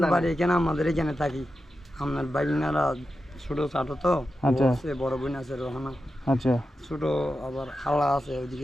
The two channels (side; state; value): both; normal; correlation 0.90